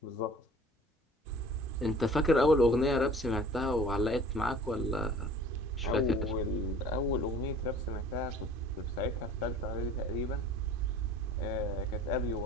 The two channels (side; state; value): both; normal; correlation 0.47